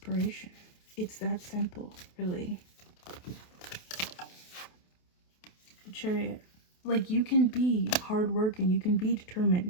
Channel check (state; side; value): late; right; 28 ms